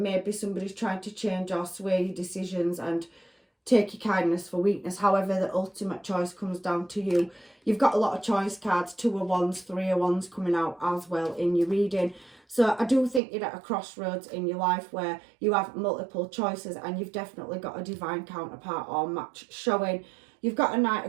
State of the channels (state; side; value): drops out; left; at 13.2 s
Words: somebody's trying to change or sway your decisions and take your kindness for weakness. However, the ultimate choice comes down to you. You've got a lot of choice cards, 2 of Wands, 3 of Wands coming out as well in your reading. So I do think you're at a crossroads in your life where you have multiple choices, and you've definitely got a divine counterpart or match showing. You've got a Knight